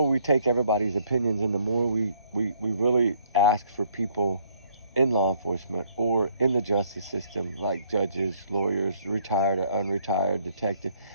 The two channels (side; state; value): both; inverted; correlation -0.65